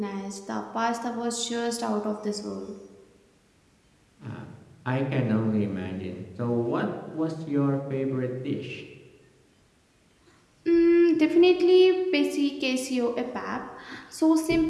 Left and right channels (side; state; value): both; identical; correlation 1.00